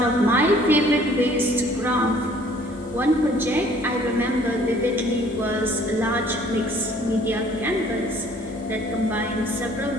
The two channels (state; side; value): normal; both; correlation 0.57